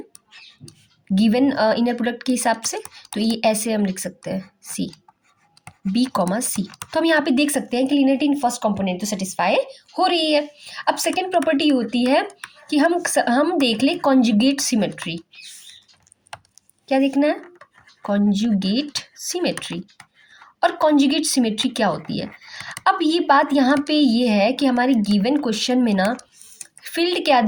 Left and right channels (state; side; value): identical; both; correlation 1.00